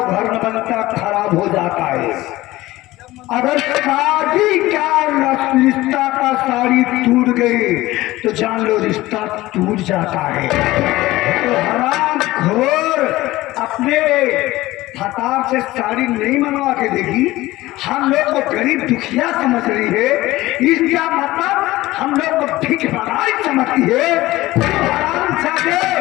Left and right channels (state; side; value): quieter; right; 17.9 dB